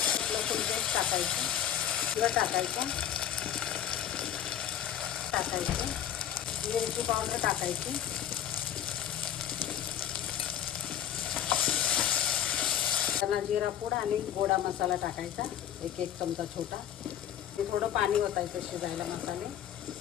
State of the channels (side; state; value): right; quieter; 10.4 dB